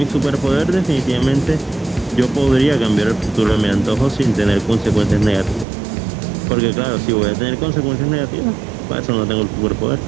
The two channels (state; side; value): drops out; left; at 5.7 s